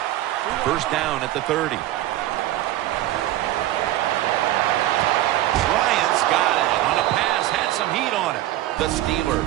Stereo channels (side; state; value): left; quieter; 14.7 dB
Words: 1st down at the 30. Bryant's got it on a pass, had some heat on it. The